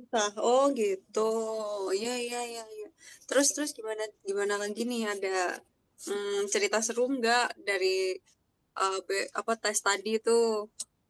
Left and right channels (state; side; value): identical; both; correlation 1.00